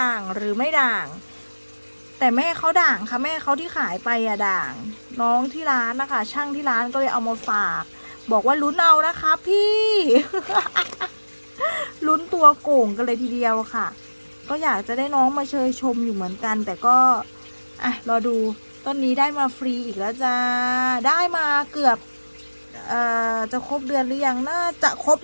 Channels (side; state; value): both; inverted; correlation -1.00